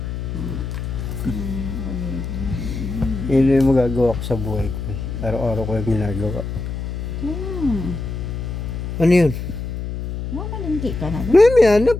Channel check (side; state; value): left; noise; hum, 5 dB below the sound